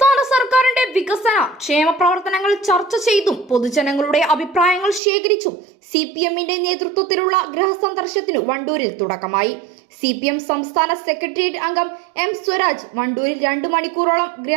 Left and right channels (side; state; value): left; drops out; at 5.0 s